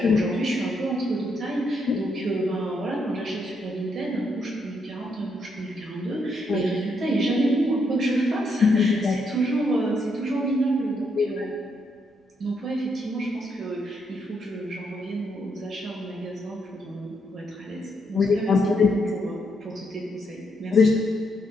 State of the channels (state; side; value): normal; both; correlation 0.77